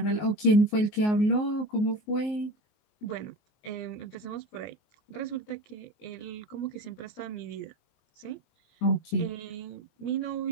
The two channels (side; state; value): right; late; 19 ms